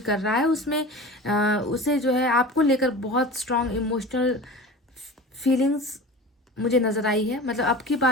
रहा है, उसमें उसे जो है आपको लेकर बहुत स्ट्रांग इमोशनल फीलिंग्स मुझे नज़र आई है। मतलब अब की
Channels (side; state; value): both; normal; correlation 0.35